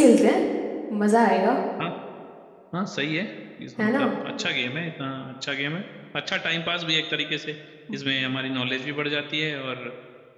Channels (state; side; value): identical; both; correlation 1.00